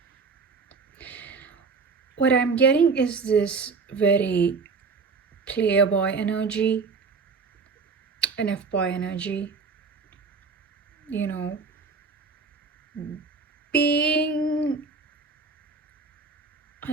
What I'm getting is this very playboy energy, an F-boy energy. You know, being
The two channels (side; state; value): left; quieter; 4.7 dB